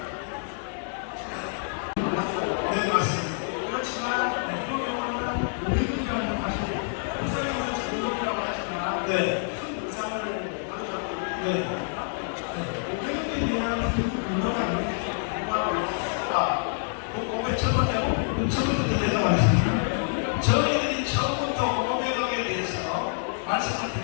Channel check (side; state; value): right; silent; 60 dB below the other